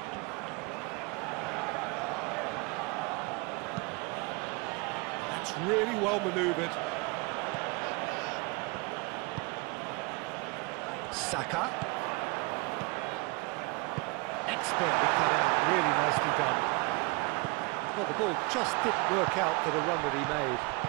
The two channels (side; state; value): left; quieter; 28.0 dB